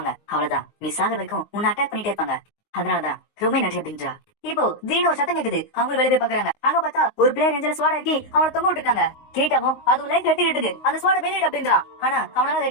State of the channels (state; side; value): late; right; 19 ms